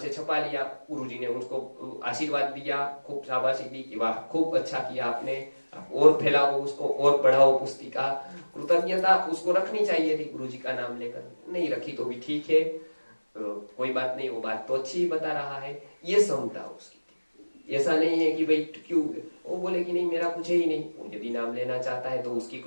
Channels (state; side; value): inverted; both; correlation -1.00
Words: छपा लिया, गुरुजी ने उसको आशीर्वाद दिया, खूब शाबाशी दी कि वाह खूब अच्छा किया आपने, आप और फैलाओ उसको, और बढ़ाओ पुस्तिका। कृतज्ञता उसको रखनी चाहिए थी गुरुजी का नाम लेकर, नहीं रखी तो भी ठीक है, कोई बात नहीं, वो बात तो अच्छी ही बता रहा है। ये समता उसकी थी। ऐसा नहीं है कि भाई क्यों, वो बोले कि नहीं मेरा कुछ ही नहीं, वो यदि नाम लेना चाहता है तो उसकी